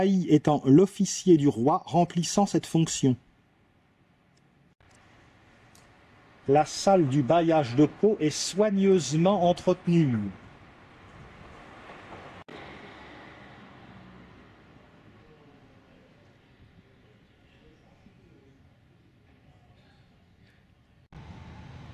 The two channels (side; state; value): both; identical; correlation 1.00